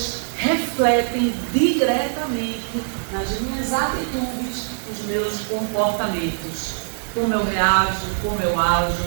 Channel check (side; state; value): left; silent; digital silence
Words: refletem diretamente nas minhas atitudes, nos meus comportamentos. Como eu reajo, como eu ajo,